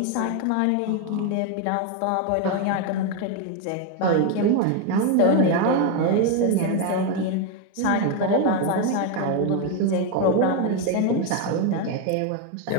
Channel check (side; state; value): both; different; correlation 0.01